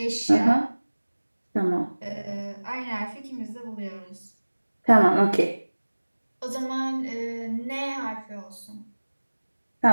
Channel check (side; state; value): both; inverted; correlation -1.00